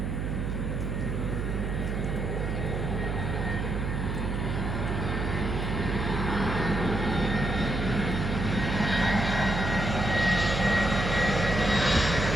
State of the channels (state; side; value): noise; right; hum, 2 dB below the sound